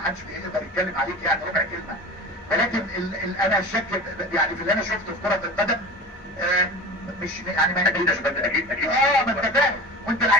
بيقدر يتكلم عليك يعني ربع كلمه. ولكن انا الشك يعني في اللي انا شفته في كره القدم مش يعني ما اكيد اكيد اكيد ما انت فاهم وانت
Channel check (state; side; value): normal; both; correlation 0.34